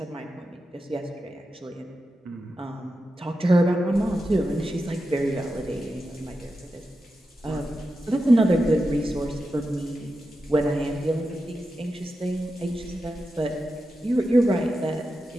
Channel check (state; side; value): normal; both; correlation 0.90